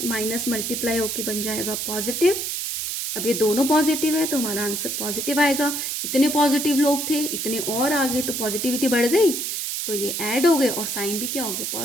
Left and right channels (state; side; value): noise; right; hiss, 3 dB below the sound